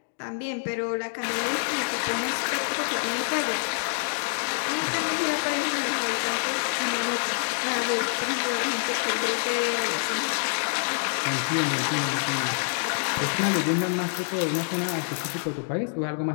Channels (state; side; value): silent; right; digital silence